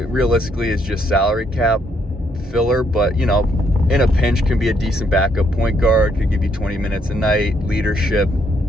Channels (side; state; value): both; normal; correlation 0.72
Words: is just salary cap filler, but in a pinch can be a decent backup point guard, could give you 20 minutes a night, leadership,